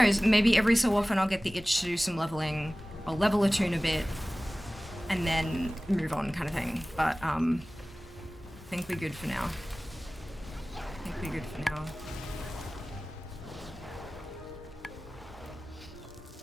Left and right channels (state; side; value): normal; both; correlation 0.98